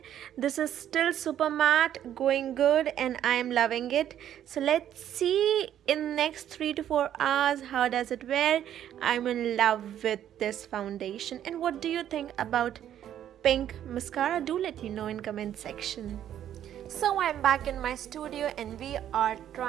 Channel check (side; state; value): left; quieter; 10.7 dB